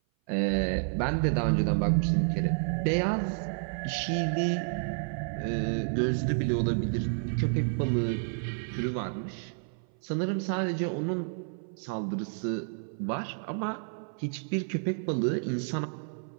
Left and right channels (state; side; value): silent; left; 56 dB below the other